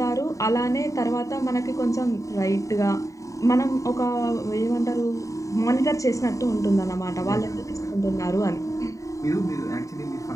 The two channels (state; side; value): late; right; 0.16 ms